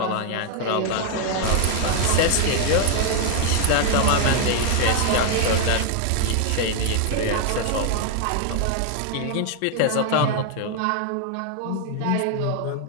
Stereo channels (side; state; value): both; different; correlation 0.00